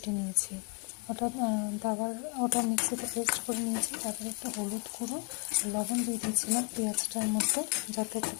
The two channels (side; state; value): right; quieter; 31.2 dB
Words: নিয়েছি। ওটা মিক্সিতে পেস্ট করে নিয়েছি। তারপরে একটু হলুদ গুঁড়ো, লবণ দিয়ে দিয়েছিলাম পেঁয়াজটার মধ্যে যাতে একটু